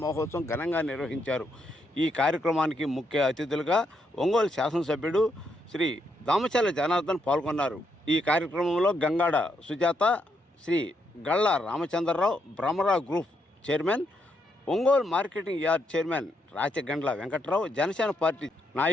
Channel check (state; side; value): normal; both; correlation 0.78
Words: మహోత్సవం ఘనంగా నిర్వహించారు. ఈ కార్యక్రమానికి ముఖ్య అతిథులుగా ఒంగోలు శాసనసభ్యుడు శ్రీ దామచర్ల జనార్దన్ పాల్గొన్నారు. ఈ కార్యక్రమంలో Gangada Sujatha, Shri Galla Ramachandrarao, Brahmarao group chairman, Ongole marketing yard chairman Rachagandla Venkatrao, Janasena party